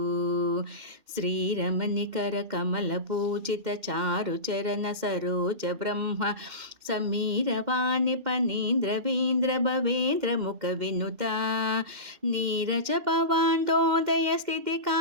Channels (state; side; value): late; left; 2.1 ms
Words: ಶ್ರೀರಮಣಿಕರ ಕಮಲ ಪೂಜಿತ ಚಾರು ಚರಣ ಸರೋಜ ಬ್ರಹ್ಮ ಸಮೀರವಾಣಿ ಪನೀಂದ್ರವೀಂದ್ರ ಭವೇಂದ್ರ ಮುಖ ವಿನುತ ನೀರಜ ಭವಾಂಡೋದಯ ಸ್ಥಿತಿ